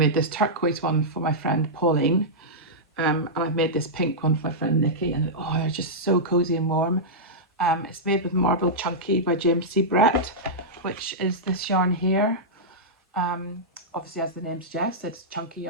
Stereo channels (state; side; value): normal; both; correlation -0.10